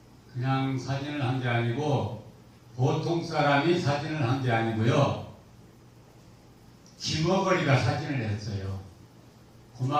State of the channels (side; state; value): both; identical; correlation 1.00